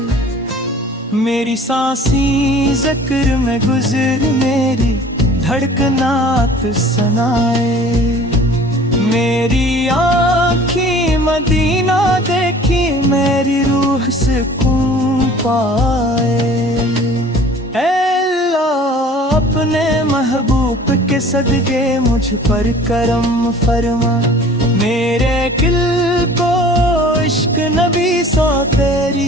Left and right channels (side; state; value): both; normal; correlation 0.48